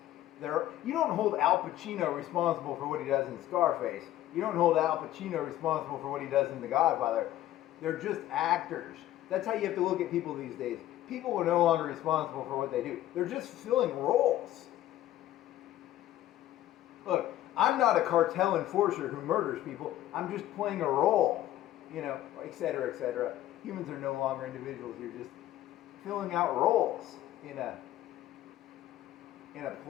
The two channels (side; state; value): right; quieter; 13.8 dB